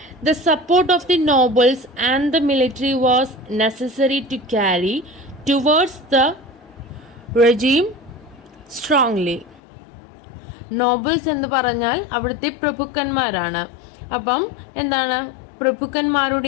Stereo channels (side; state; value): right; drops out; at 9.6 s